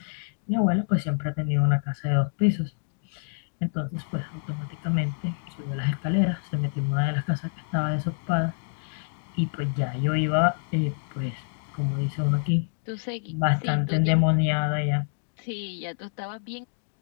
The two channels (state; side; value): silent; right; digital silence